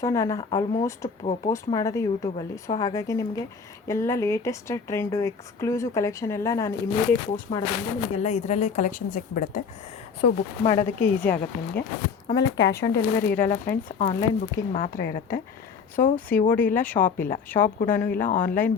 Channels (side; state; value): right; quieter; 5.8 dB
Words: ನಾನು ಆಲ್ಮೋಸ್ಟ್ ಪೋಸ್ಟ್ ಮಾಡೋದು ಯೂಟ್ಯೂಬಲ್ಲಿ. ಸೊ ಹಾಗಾಗಿ ನಿಮಗೆ ಎಲ್ಲ ಲೇಟೆಸ್ಟ್ ಟ್ರೆಂಡು, ಎಕ್ಸ್ಕ್ಲೂಸಿವ್ ಕಲೆಕ್ಷನ್ ಎಲ್ಲ ನಾನು ಇಮಿಡಿಯೇಟ್ ಪೋಸ್ಟ್ ಮಾಡೋದ್ರಿಂದ ನಿಮಗೆಲ್ಲ ಇದರಲ್ಲೇ ಕಲೆಕ್ಷನ್ ಸಿಕ್ಬಿಡುತ್ತೆ. ಸೊ ಬುಕ್ ಮಾಡೋದಕ್ಕೆ ಈಸಿ ಆಗುತ್ತೆ ನಿಮಗೆ. ಆಮೇಲೆ ಕ್ಯಾಶ್ ಆನ್ ಡೆಲಿವರಿ ಇರೋಲ್ಲ ಫ್ರೆಂಡ್ಸ್, ಆನ್ಲೈನ್ ಬುಕ್ಕಿಂಗ್ ಮಾತ್ರ ಇರುತ್ತೆ. ಸೊ COD ಇಲ್ಲ, ಶಾಪ್ ಕೂಡ ಇಲ್ಲ, ಆನ್ಲೈನ್